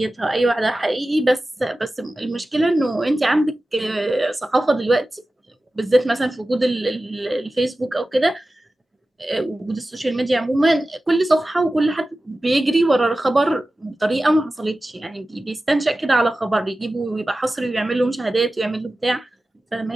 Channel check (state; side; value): normal; both; correlation 0.95